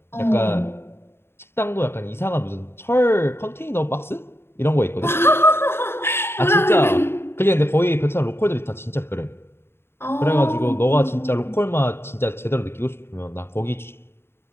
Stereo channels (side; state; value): right; late; 0.11 ms